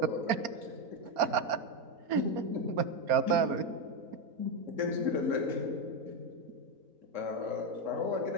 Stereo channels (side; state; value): left; late; 4.3 ms